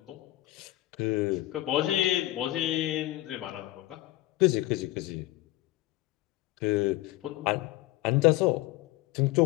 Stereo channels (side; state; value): right; quieter; 17.0 dB